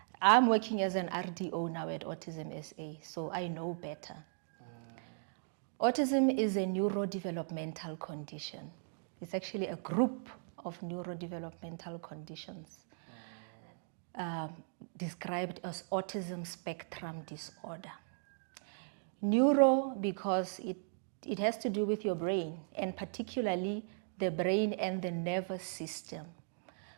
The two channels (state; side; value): silent; left; digital silence